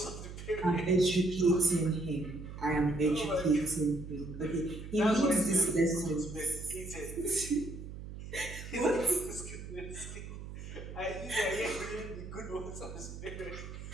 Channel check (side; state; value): right; noise; hum, 11 dB below the sound